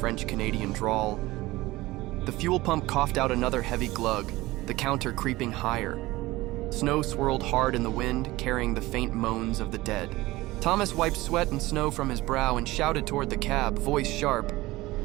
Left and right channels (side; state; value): left; quieter; 19.1 dB